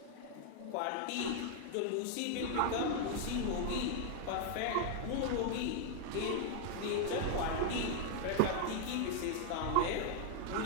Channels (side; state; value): both; different; correlation 0.00